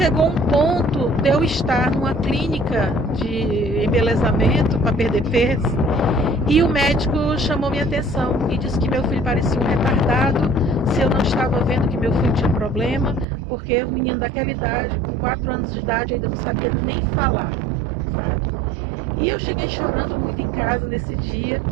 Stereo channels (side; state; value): left; drops out; at 13.2 s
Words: um ponto de eu estar numa clínica de embelezamento para perder peso e o médico chamou minha atenção e disse que meu filho parecia um retardado, se eu não estava vendo que meu filho tinha problema, porque o menino daquela idade, com 4 anos de idade, ainda não sabia nem falar. E eu cheguei chorando muito em casa nesse dia